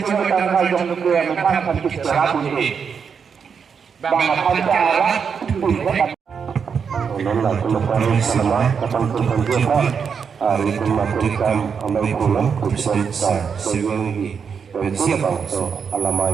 kanghong Jubilee yang makan kita rabu ini. Nanda keleparan sama kapan kemudian hari kemakan amai pulang kucing sah sewengi pensi bangsa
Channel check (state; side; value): quieter; left; 6.5 dB